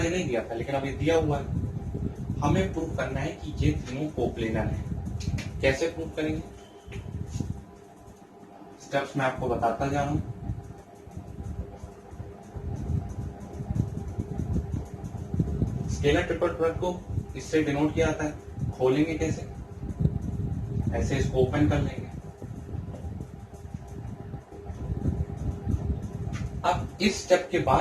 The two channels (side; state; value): both; identical; correlation 1.00